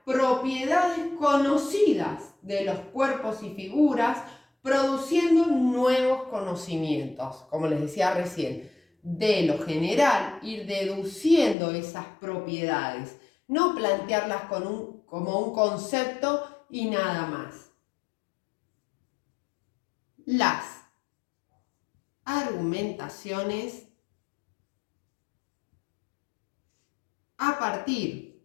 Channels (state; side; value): drops out; right; at 11.6 s